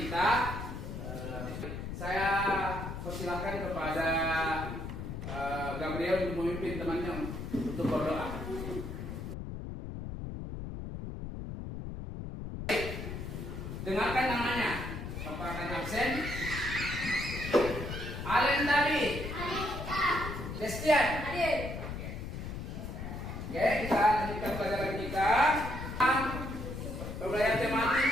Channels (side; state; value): left; noise; rumble, 7 dB below the sound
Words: saya persilahkan kepada Gabriel untuk memimpin temannya untuk berdoa. Dengarkan namanya. Bapak akan absen. Alen tadi. Destian. Hadir. Oke, kita lanjutkan pelajaran kita. Pembelajaran tematik.